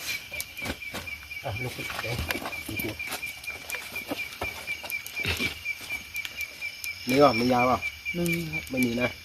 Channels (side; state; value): both; identical; correlation 1.00